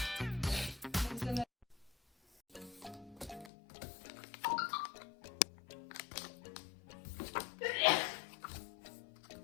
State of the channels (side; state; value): right; drops out; at 3.5 s